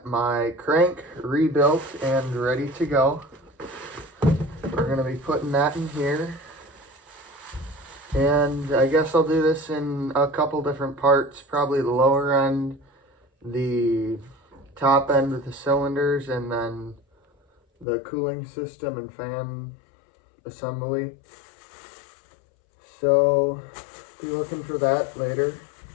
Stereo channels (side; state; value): right; drops out; at 17.9 s